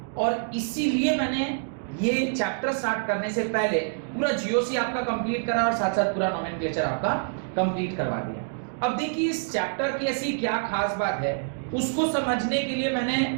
और इसीलिए मैंने ये चैप्टर स्टार्ट करने से पहले पूरा जीओसी आपका कंप्लीट करा और साथ साथ पूरा नोमेनक्लेचर आपका कंप्लीट करवा दिया। अब देखिए इस चैप्टर की ऐसी क्या खास बात है, उसको समझने के लिए मैंने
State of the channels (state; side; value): silent; left; digital silence